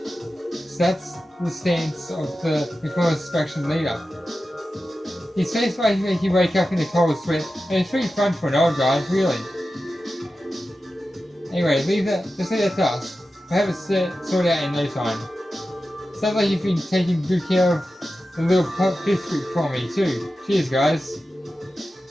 So that's the stance of the Reformist faction leader. His face might make you wake up in a cold sweat, and it's pretty fun for an old guy, really. Anyway, just leave that to us. We'll have it sorted out in no time. Sounds like you've been taking good care of the little pipsqueak for me too. Cheers, guys.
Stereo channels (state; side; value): normal; both; correlation 0.93